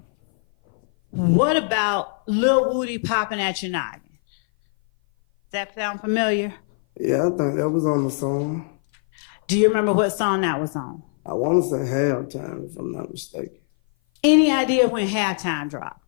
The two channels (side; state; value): right; silent; 57 dB below the other